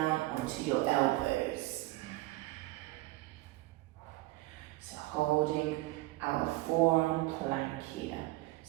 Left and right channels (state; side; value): quieter; left; 19.5 dB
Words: onto your elbows. So holding our forearm plank here.